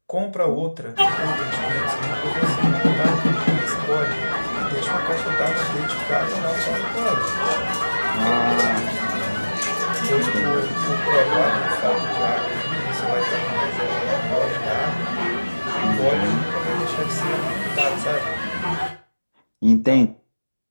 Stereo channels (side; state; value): both; inverted; correlation -1.00